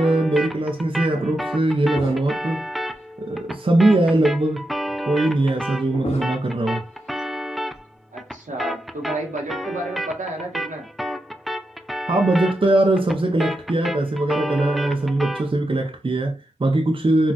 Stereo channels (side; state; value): both; normal; correlation 0.87